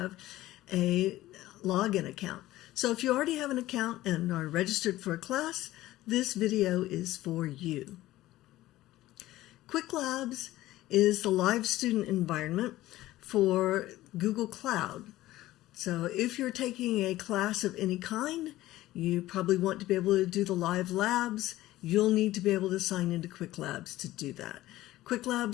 a login account. So if you already have an account and are registered for a class, this video is for you. Qwiklabs is the live student environment for Google Cloud. So if you're taking a class of any kind, you probably want to be able to do the live labs. You'll need to be able to sign into Qwiklabs to do that.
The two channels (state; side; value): quieter; right; 16.1 dB